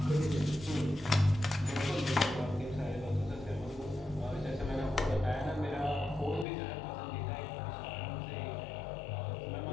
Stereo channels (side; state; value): right; drops out; at 6.5 s